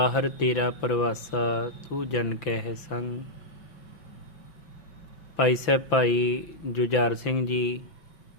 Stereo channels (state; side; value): late; right; 5.9 ms